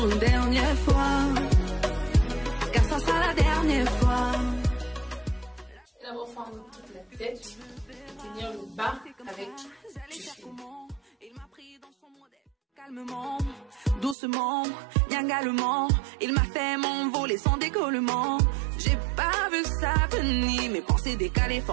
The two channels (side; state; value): left; drops out; at 14.2 s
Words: une dernière fois, car ça sera la dernière fois. Je vais d'abord fendre toute la tête, tenir le bas avec du fil. Il m'a pris dans son modèle. Calmement, doucement, niangalement, il m'a fait m'envoler sans décollement. J'ai pas vu ça venir, mes pensées décalées,